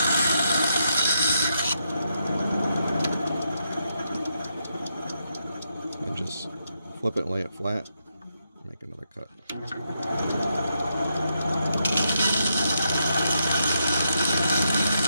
And just flip it and lay it flat. Make another cut.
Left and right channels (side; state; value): both; inverted; correlation -0.81